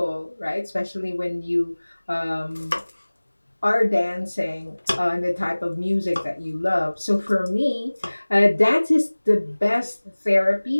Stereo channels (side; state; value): both; inverted; correlation -1.00